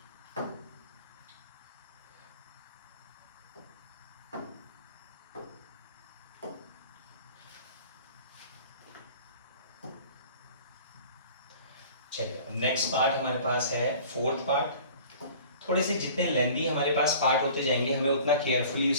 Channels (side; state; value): both; inverted; correlation -0.46